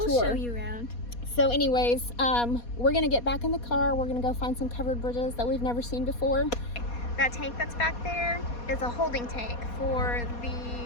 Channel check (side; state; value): right; late; 4.2 ms